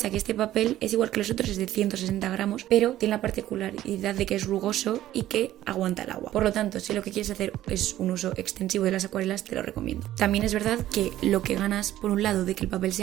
Que este papel es igual que los otros, es de 160 gramos, pero tiene la particularidad de que es rugoso y que aguanta el agua. Por lo tanto, si lo que quieres hacer es un uso extensivo de las acuarelas, te lo recomiendo. También es verdad que lo que ganas por un lado de que el papel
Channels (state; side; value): quieter; left; 13.6 dB